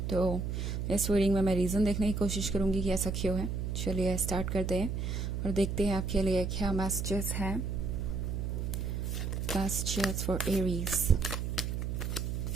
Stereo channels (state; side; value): noise; right; hum, 2 dB below the sound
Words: तो इस रीडिंग में मैं रीज़न देखने की कोशिश करूंगी कि ऐसा क्यों है। चलिए स्टार्ट करते हैं और देखते हैं आपके लिए क्या मैसेजेस हैं। Messages for Aries.